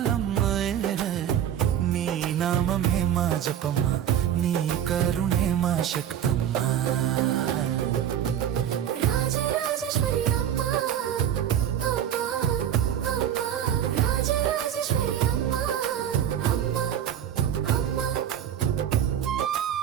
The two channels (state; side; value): quieter; left; 10.0 dB